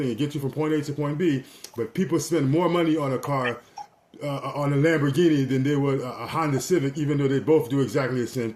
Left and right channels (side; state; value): both; identical; correlation 1.00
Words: It gets you from point A to point B. But people spend more money on a car, on a Lamborghini, than they would a Honda Civic, even though they both do exactly the same